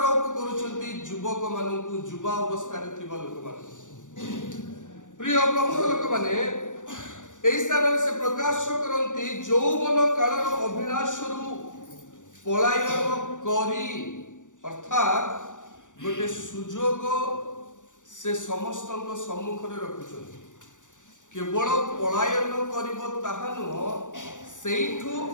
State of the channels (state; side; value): late; right; 0.87 ms